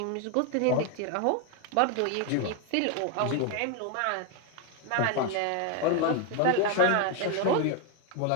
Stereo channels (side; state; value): both; different; correlation 0.01